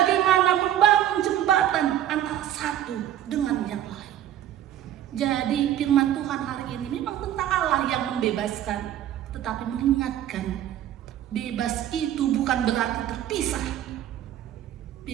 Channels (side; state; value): left; quieter; 11.6 dB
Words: membangun jembatan antara satu dengan yang lain. Jadi firman Tuhan hari ini memang tentang Allah yang membebaskan, tetapi mengingatkan bebas itu bukan berarti terpisah.